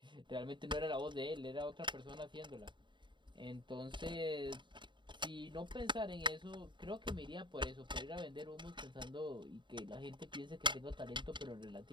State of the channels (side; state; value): left; late; 0.23 ms